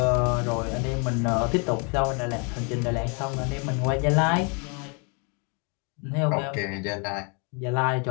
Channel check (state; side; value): quieter; right; 35.4 dB